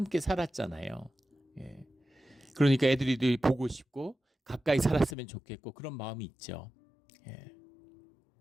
살았잖아요. 그러니까 애들이 보고 싶고 가까이 살았으면 좋겠고 그런 마음이 있죠.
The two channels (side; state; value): right; drops out; at 5.2 s